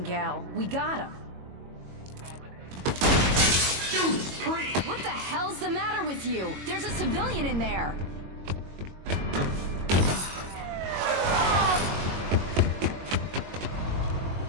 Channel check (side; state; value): left; late; 22 ms